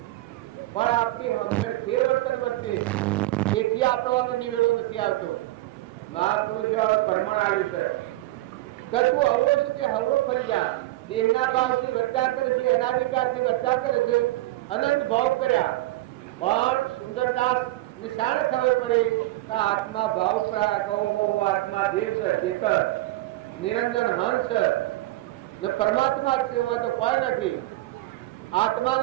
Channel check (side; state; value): left; quieter; 17.8 dB